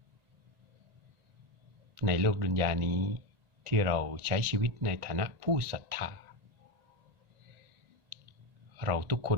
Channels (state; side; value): late; left; 1.9 ms